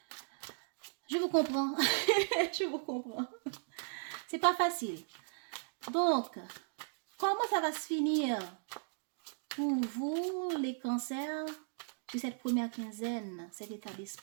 Je vous comprends. Je vous comprends. C'est pas facile. Donc, comment ça va se finir pour vous, les cancers, sur cette première quinzaine, cet état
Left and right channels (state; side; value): silent; left; digital silence